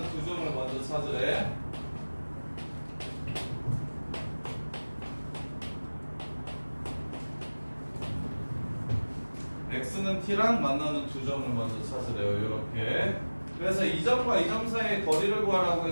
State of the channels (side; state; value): both; inverted; correlation -1.00